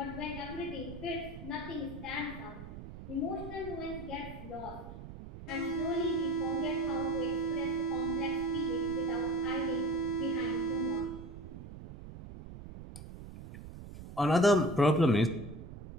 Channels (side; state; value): right; noise; rumble, 12 dB below the sound